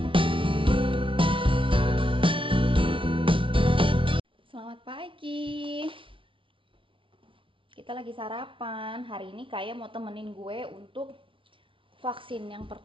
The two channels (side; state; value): left; late; 0.25 ms